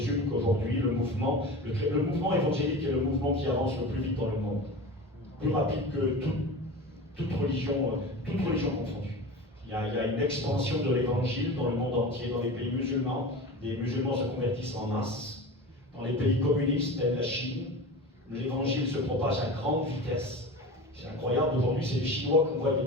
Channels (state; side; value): normal; both; correlation 0.31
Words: qu'aujourd'hui, le mouvement évangélique est le mouvement qui avance le plus vite dans le monde. Plus rapide que toute religion confondue. Il y a une expansion de l'évangile dans le monde entier, dans les pays musulmans. Les musulmans se convertissent en masse. Dans les pays communistes, tels la Chine, l'évangile se propage à grande vitesse. C'est incroyable, aujourd'hui c'est les Chinois qu'on voit des